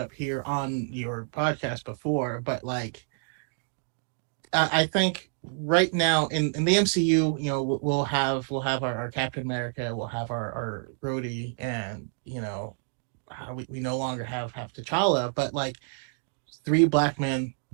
here on your podcast before, but like I think right now in the MCU, you know, we'll have our Captain America, we'll have our Rhodey, and you know, we no longer have T'Challa, but like three black men,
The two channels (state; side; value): silent; left; digital silence